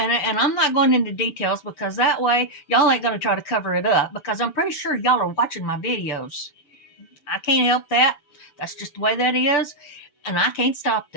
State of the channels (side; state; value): right; late; 6.8 ms